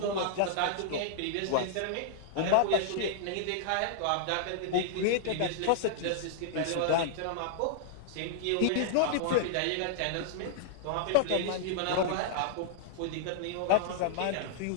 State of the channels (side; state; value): both; different; correlation -0.01